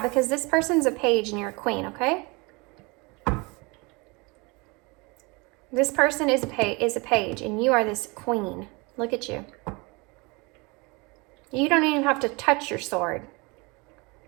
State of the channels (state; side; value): quieter; left; 27.3 dB